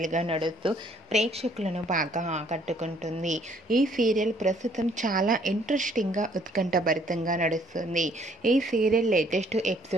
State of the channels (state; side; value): normal; both; correlation 0.63